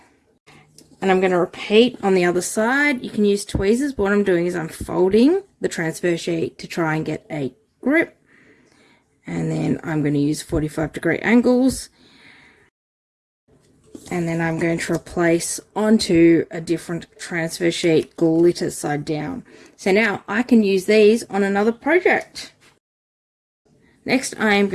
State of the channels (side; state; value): both; identical; correlation 1.00